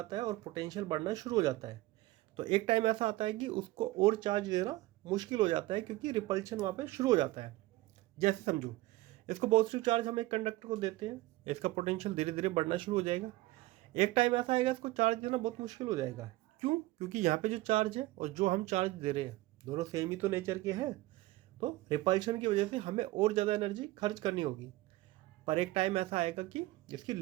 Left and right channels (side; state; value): left; quieter; 18.4 dB